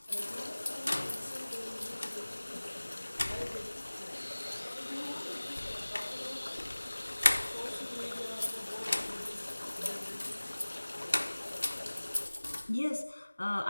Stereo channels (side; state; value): both; inverted; correlation -1.00